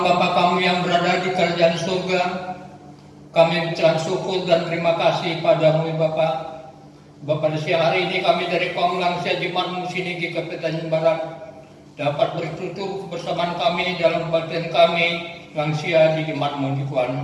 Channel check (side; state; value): both; identical; correlation 1.00